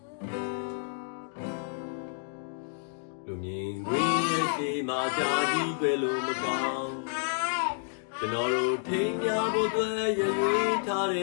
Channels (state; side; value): silent; right; digital silence